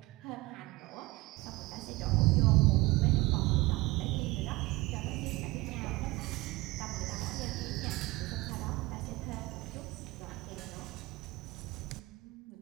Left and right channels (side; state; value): left; quieter; 21.0 dB